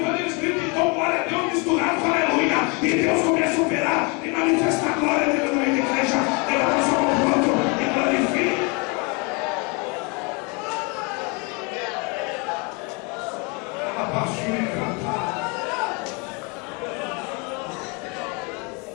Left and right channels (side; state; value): right; quieter; 31.0 dB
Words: eles gritam, então glória a Deus misturado com aleluia. E Deus começa a operar e manifestar a glória dele no meio da igreja. Ele vai só um ponto e glorifica.